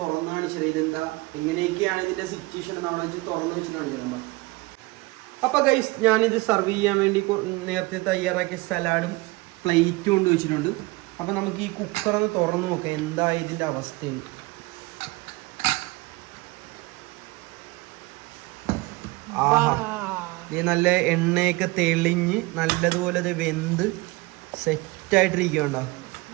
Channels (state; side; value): quieter; left; 23.1 dB